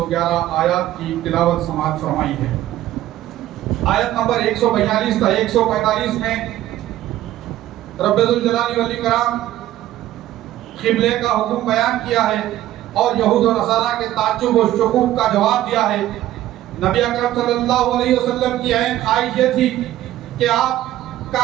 آیات کی تلاوت سماعت فرمائی ہے۔ آیت نمبر 142 تا 145 میں رب ذوالجلال والاکرام قبلے کا حکم بیان کیا ہے اور یہود و نصارہ کے تعجب و شکوک کا جواب دیا ہے۔ نبی اکرم صلی اللہ علیہ وسلم کی عین خواہش یہ تھی کہ آپ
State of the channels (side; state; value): left; quieter; 13.9 dB